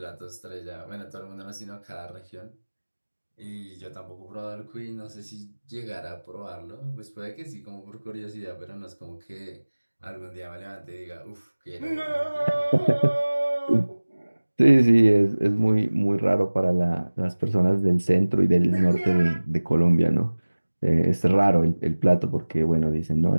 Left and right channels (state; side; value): inverted; both; correlation -1.00